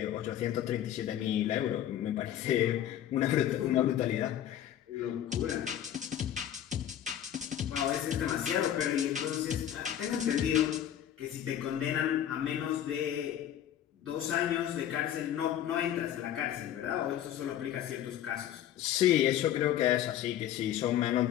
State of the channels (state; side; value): quieter; right; 11.0 dB